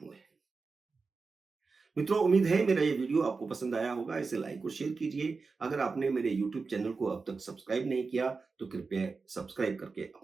हैं। मित्रों, उम्मीद है मेरा ये वीडियो आपको पसंद आया होगा। इसे लाइक और शेयर कीजिए। अगर आपने मेरे यूट्यूब चैनल को अब तक सब्सक्राइब नहीं किया तो कृपया सब्सक्राइब करके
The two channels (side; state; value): left; quieter; 4.4 dB